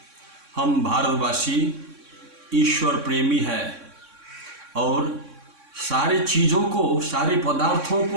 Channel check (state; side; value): late; left; 3.6 ms